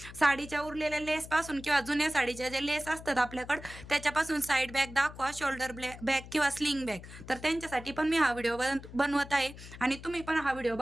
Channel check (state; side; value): noise; left; hum, 15 dB below the sound